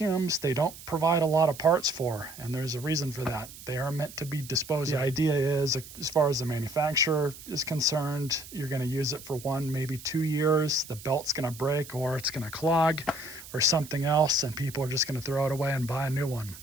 they don't provide a lot of parts for, and there's a reason for that. They are meant to be disposed of. The idea is, as far as the manufacturer is concerned, you're going to use it for 1, maybe 2 years. The belt's going to break, or it's going to clog, or something else, and people are just going to throw it away and buy a new one.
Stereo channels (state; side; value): noise; right; hiss, 16 dB below the sound